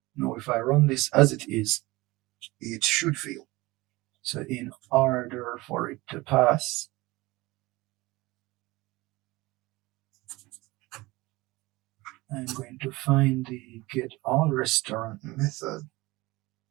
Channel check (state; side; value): quieter; left; 21.3 dB